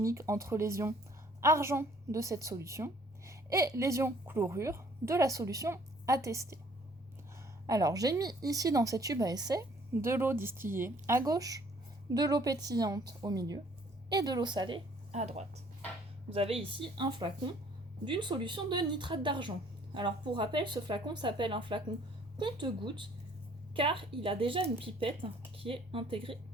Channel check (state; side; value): normal; both; correlation 0.59